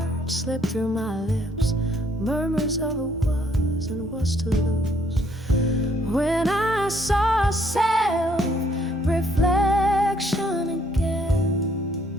slipped through my lips, murmurs of a was and was to lose. When I saw self-reflection again,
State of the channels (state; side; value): normal; both; correlation 0.67